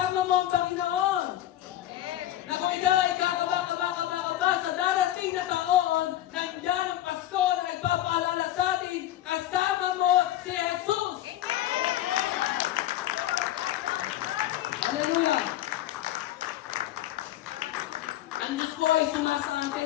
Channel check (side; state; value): right; quieter; 13.4 dB